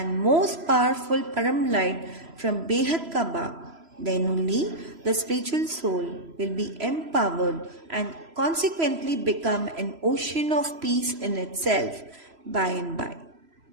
most powerful Param Light from Behad Ka Bap. Then only the spiritual soul will be empowered and consequently become an ocean of peace in itself by and by.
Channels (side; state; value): left; late; 3.0 ms